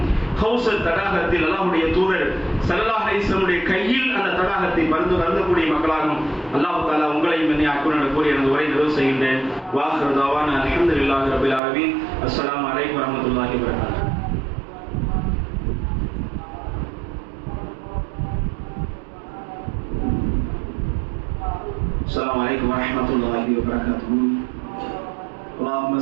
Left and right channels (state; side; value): drops out; left; at 11.6 s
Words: கௌசர் தடாகத்தில் அல்லாஹ்வுடைய தூதர் ஸல்லல்லாஹு அலைஹி வஸல்லம் கையில் அந்த தடாகத்தை பருந்தக்கூடிய மக்களாகவும் அல்லாஹ் தஆலா உங்களையும் என்னை ஆக்குவான் கூறி எனது உரை நிறைவு செய்கின்றேன். வாஹிரு தஅவானா அல்ஹம்துலில்லாஹி ரப்பில் ஆலமீன். அஸ்ஸலாமு அலைக்கும் வரஹ்மத்துல்லாஹி வபரகாத்துஹு. السلام عليكم ورحمة الله وبركاته. اللهم